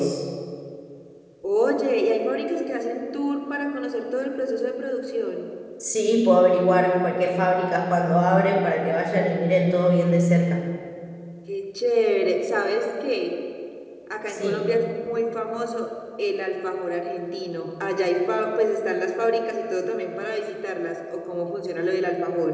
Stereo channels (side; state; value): both; identical; correlation 1.00